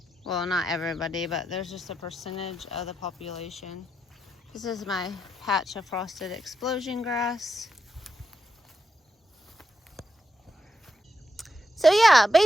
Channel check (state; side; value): normal; both; correlation 0.84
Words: Well, not everybody, but there's just a percentage of the population. This is my patch of frosted explosion grass. So yeah,